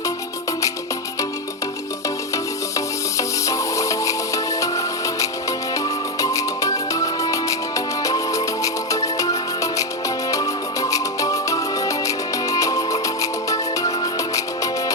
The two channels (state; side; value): normal; both; correlation 0.07